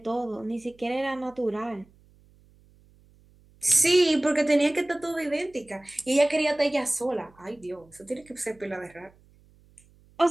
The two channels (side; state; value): right; noise; hum, 29 dB below the sound